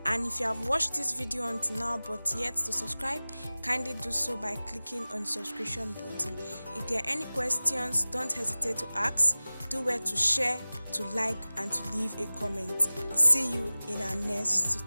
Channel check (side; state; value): both; inverted; correlation -0.98